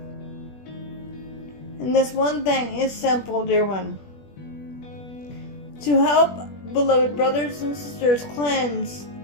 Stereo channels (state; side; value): late; right; 21 ms